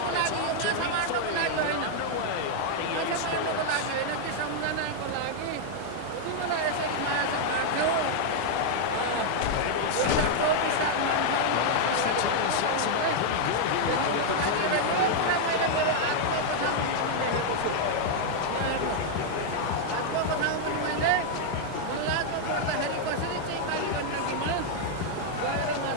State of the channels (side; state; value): both; different; correlation -0.01